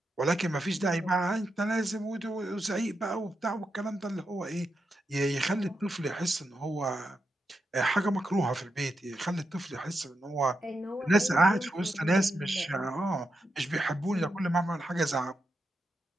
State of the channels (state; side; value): normal; both; correlation 0.85